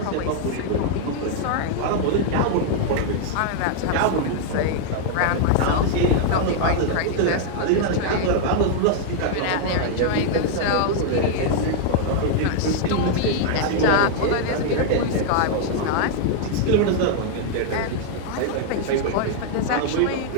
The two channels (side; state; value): both; different; correlation 0.00